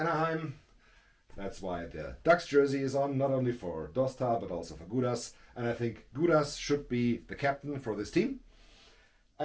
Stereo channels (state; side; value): identical; both; correlation 1.00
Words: That's why the Ducks jersey is on, not only for Dosta, but also for Gudas. And I think Gudas should be the captain for this team.